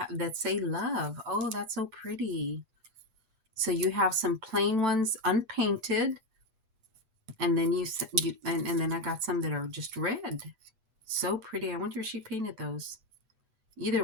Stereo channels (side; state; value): left; late; 8.1 ms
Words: say love. Oh, that's so pretty. So you have some plain ones unpainted. And then and then I got some that are just red. So pretty. I wonder if she painted those. Either